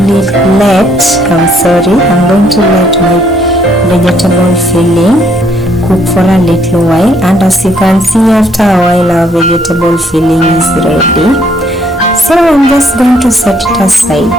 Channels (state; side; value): normal; both; correlation 0.68